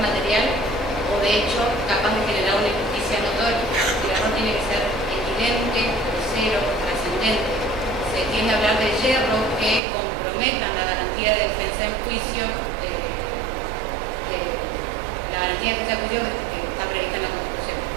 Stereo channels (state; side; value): drops out; left; at 9.8 s